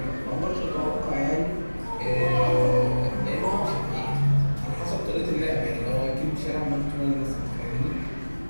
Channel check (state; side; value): inverted; both; correlation -1.00